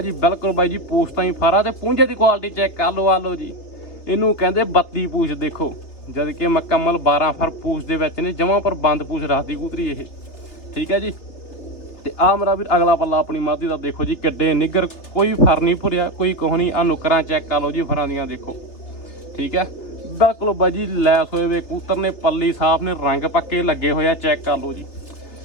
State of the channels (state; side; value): late; right; 3.3 ms